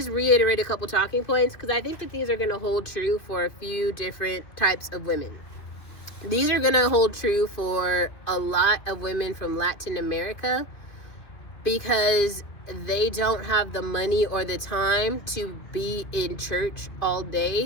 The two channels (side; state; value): right; late; 2.8 ms